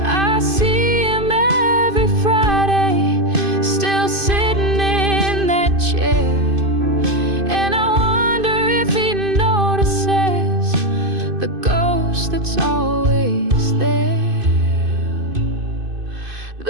I see him every Friday, still sitting in that chair, and I wonder if he notices the ghost that's always there.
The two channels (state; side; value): late; left; 2.5 ms